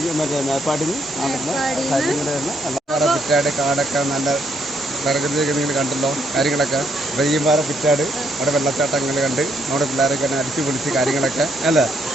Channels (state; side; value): normal; both; correlation 0.73